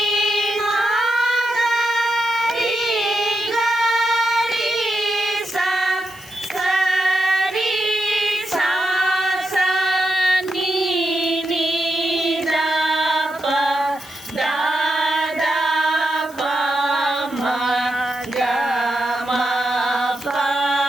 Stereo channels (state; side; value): noise; left; hiss, 22 dB below the sound